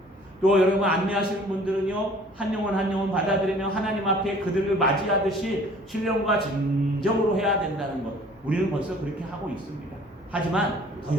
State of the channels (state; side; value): normal; both; correlation 0.52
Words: 또 여러분 안내하시는 분들은요, 한 영혼 한 영혼 받아들이며 하나님 앞에 그들을 맞이하듯이 신령과 진정으로 해야 된다는 것. 우리는 벌써 그렇게 하고 있습니다. 하지만 더